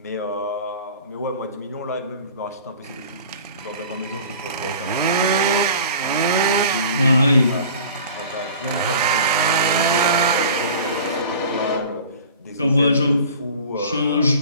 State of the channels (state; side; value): inverted; both; correlation -0.42